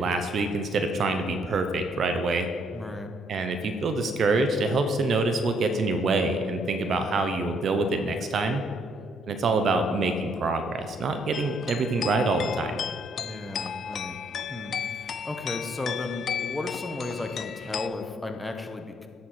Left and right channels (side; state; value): both; normal; correlation 0.69